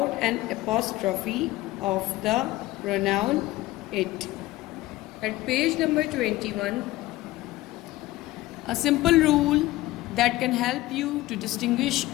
an apostrophe of the pronoun it. At page number 21, a simple rule that can help you to distinguish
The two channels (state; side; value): quieter; right; 17.6 dB